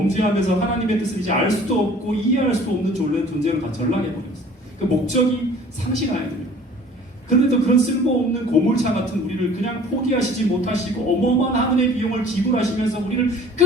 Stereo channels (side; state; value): both; normal; correlation 0.49